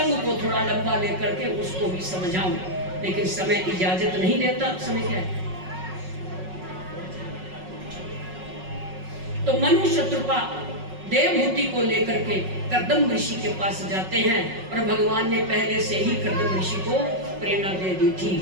को थोड़ा लंबा लेकर के उसको भी समझाऊं, लेकिन समय इजाजत नहीं देता। समय क्या है? तो मनु शत्रुपा देवहूति को लेकर के कर्दम ऋषि के पास जाते हैं और भगवान ने पहले से ही कर्दम ऋषि को प्रेरणा दे दी थी।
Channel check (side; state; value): left; late; 5.4 ms